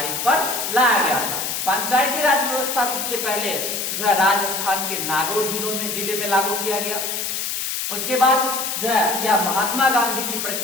पर लाया गया था। पंचायती राज व्यवस्था सबसे पहले जो है राजस्थान के नागौर जिले में लागू किया गया। उसके बाद जो है यह महात्मा गांधी की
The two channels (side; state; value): left; noise; hiss, 2 dB below the sound